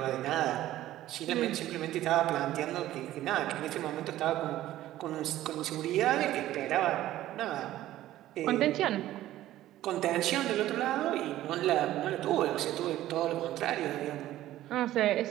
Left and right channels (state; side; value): quieter; left; 14.3 dB